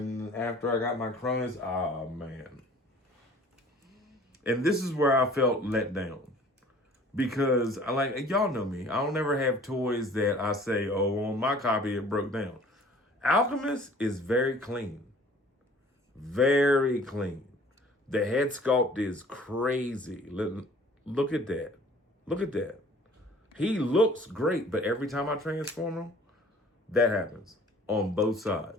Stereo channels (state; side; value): normal; both; correlation 0.51